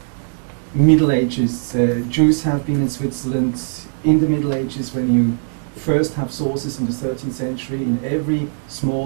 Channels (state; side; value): silent; left; digital silence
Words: Middle Ages. Jews have been in Switzerland in the Middle Ages. When you first have sources in the 13th century, in every